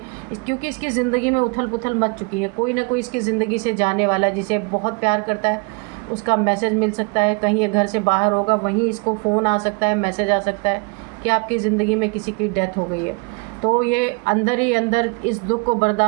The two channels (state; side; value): quieter; left; 31.7 dB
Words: क्योंकि इसकी ज़िंदगी में उथल पुथल मच चुकी है, कोई ना कोई इसकी ज़िंदगी से जाने वाला जिसे बहुत प्यार करता है, उसका मैसेज मिल सकता है। कहीं ये घर से बाहर होगा, वहीं इसको फ़ोन आ सकता है, मैसेज आ सकता है कि आपकी ज़िंदगी में किसी की डेथ हो गई है। तो ये अंदर ही अंदर इस दुख को